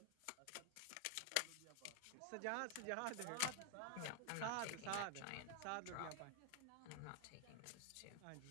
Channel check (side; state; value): both; different; correlation 0.00